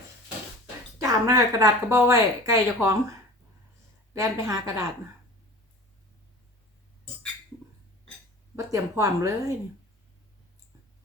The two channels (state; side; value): normal; both; correlation 0.39